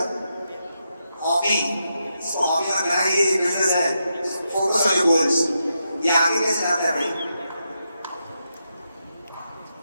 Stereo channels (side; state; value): both; inverted; correlation -0.84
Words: हॉबी। इसको हॉबी मत बनाइए, ये बिजनेस है। Focus on your goals. ये आगे कैसे जाता है भाई?